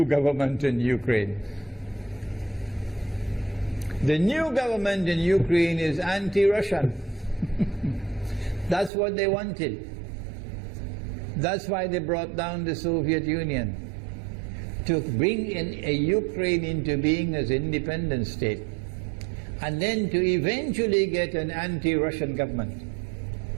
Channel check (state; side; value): drops out; left; at 8.9 s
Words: government in Ukraine. The new government in Ukraine is anti-Russian. That's what they wanted. That's why they brought down the Soviet Union, to bring in a Ukraine into being as an independent state, and then to eventually get an anti-Russian government